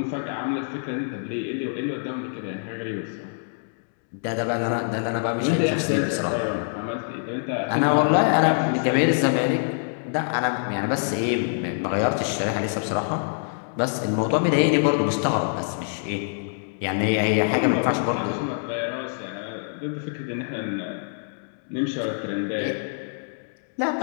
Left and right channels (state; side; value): silent; right; digital silence